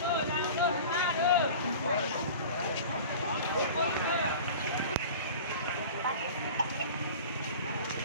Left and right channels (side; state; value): both; inverted; correlation -0.38